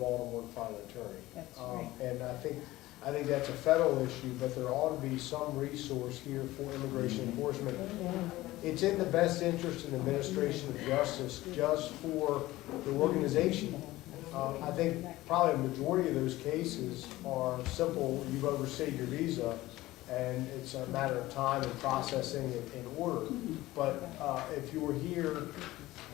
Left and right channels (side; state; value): right; quieter; 17.5 dB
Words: to find an attorney. That's right. And I think that's a federal issue, but there ought to be some resource here for immigration enforcement. It's in the best interest in the administration of justice, just for the organization. I think probably a majority of those cases are simple, you've overstayed your visa, and it's a matter of time and processing in order. But if you were here,